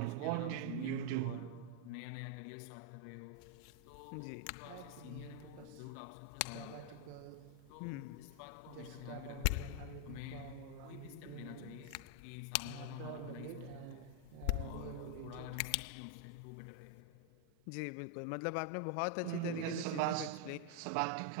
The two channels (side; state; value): both; different; correlation 0.00